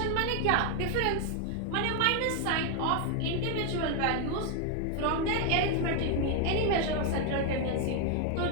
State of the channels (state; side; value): different; both; correlation 0.00